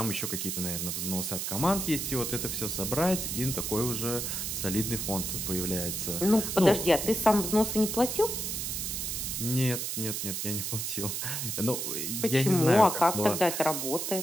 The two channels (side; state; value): right; noise; hiss, 3 dB below the sound